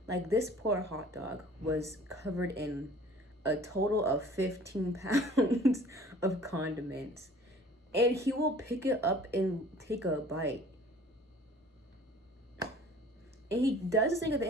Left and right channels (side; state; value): both; normal; correlation 0.49